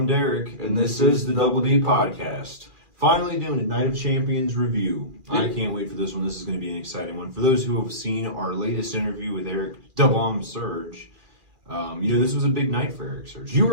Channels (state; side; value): late; left; 2.4 ms